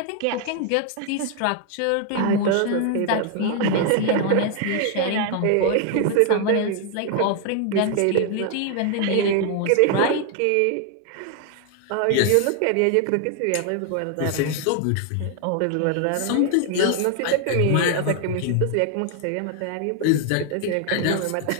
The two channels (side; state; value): both; different; correlation 0.00